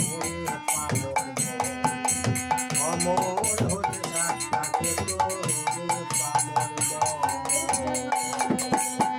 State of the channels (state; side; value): identical; both; correlation 1.00